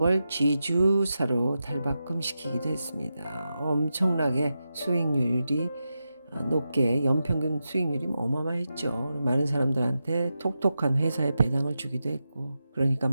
지주사로 탈바꿈시키기도 했습니다. 엄청나게 수익률이 높게 연평균 수익률이 어마어마했죠. 많은 사람들한테 톡톡한 회사에 배당을 주기도 했고, 그러니까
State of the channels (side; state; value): both; inverted; correlation -0.89